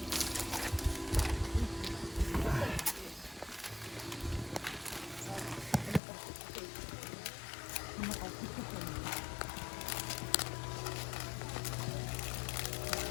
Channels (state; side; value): drops out; right; at 6.0 s